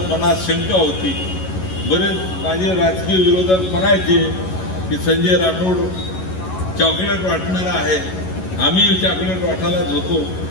मनात शंका होती. बरेच माझे राजकीय विरोधक म्हणायचे की संजय राठोड चॉकलेट वाटणारा आहे, आम्ही चॉकलेट वाटायलाच होतो,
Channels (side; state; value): right; late; 11 ms